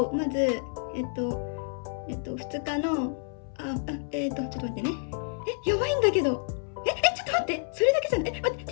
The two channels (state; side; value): silent; right; 59 dB below the other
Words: まず2日のちょっと待ってね。やばいんだけど。ちょっと待って、それだけじゃない。待って、